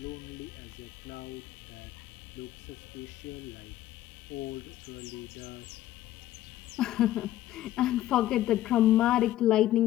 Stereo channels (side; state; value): right; quieter; 14.0 dB